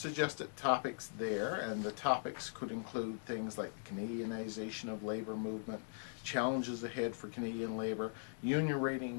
topics there, and the topics could include things like Canadianization of labor movement, challenges ahead for Canadian labor, union rating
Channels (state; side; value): silent; right; digital silence